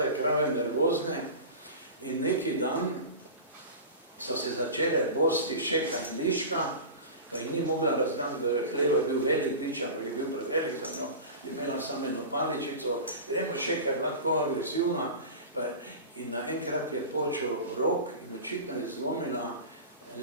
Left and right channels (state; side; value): inverted; both; correlation -0.31